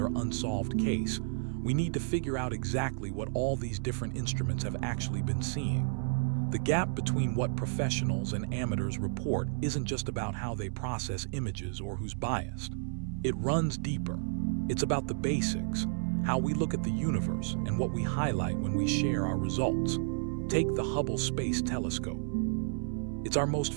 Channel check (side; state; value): left; silent; 57 dB below the other